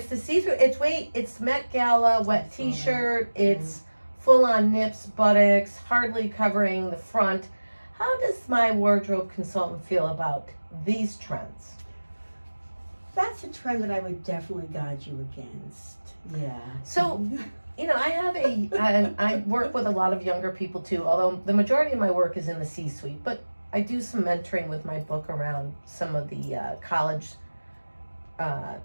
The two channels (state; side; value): inverted; both; correlation -1.00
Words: the see-through, it's Met Gala, wet t-shirt, it's full-on nips, buttocks, hardly covering the front. How does my wardrobe consultant feel about these trends? That's a trend that I would definitely guide you against. Yeah. So, I work with a lot of younger people too, although the majority of my work is in the C-suite, but I do some mentoring with my book around some of the college